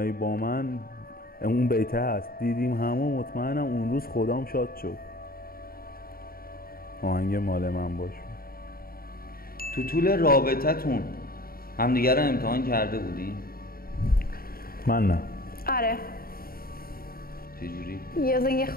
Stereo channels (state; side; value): late; right; 0.43 ms